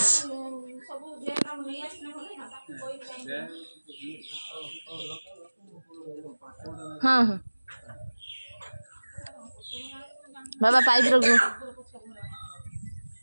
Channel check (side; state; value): both; inverted; correlation -1.00